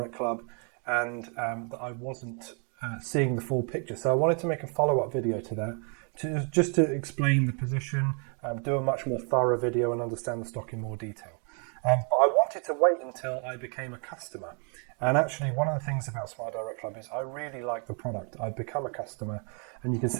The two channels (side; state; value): left; quieter; 39.4 dB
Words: Club and that I wasn't seeing the full picture. So I wanted to make a follow-up video to that, just to explain the position, do a much more thorough video and understand the stock in more detail. But I wanted to wait until I became a customer. And actually, one of the things about Smile Direct Club is I really like the product. I've become a customer, and you can